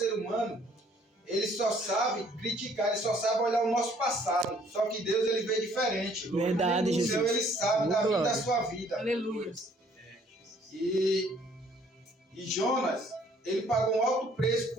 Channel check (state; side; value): normal; both; correlation 0.61